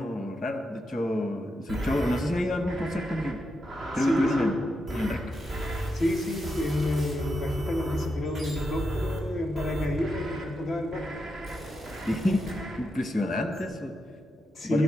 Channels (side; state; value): both; normal; correlation 0.85